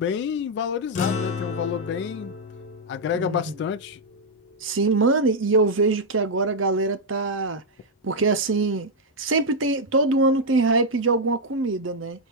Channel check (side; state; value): both; normal; correlation -0.01